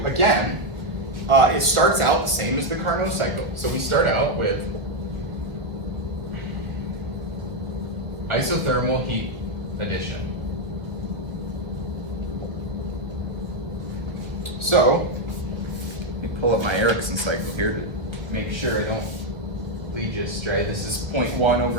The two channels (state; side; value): late; left; 1.1 ms